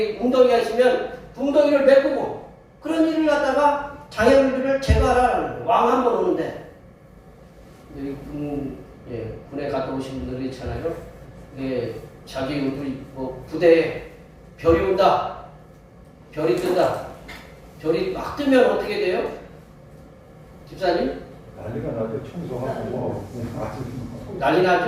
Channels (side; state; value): both; identical; correlation 1.00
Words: 웅덩이가 있으면 웅덩이를 메꾸고 그런 일을 갖다가 장애물들을 제거하라는 거예요. 왕 한 번 오는데. 여기 군에 갔다 오신 분들이 있잖아요. 자기 부대에 별이 온다. 별이 뜬다. 별이 막 뜨면 어떻게 돼요? 집사님? 난리가 나죠. 청소하고 난리